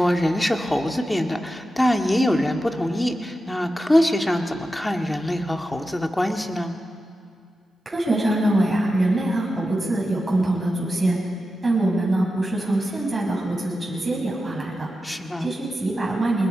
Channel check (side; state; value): both; normal; correlation 0.91